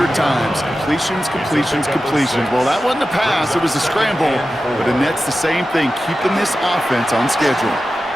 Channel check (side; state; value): both; normal; correlation 0.93